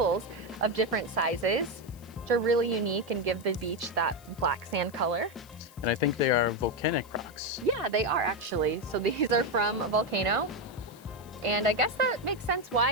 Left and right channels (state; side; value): noise; left; hiss, 24 dB below the sound